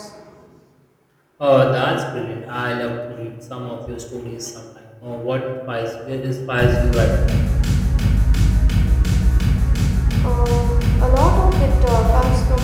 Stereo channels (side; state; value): both; identical; correlation 1.00